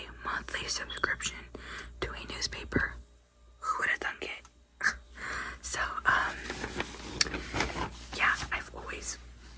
monthly subscription to a newspaper. Who would have thunk it? So, yeah, I've always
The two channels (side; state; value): both; identical; correlation 1.00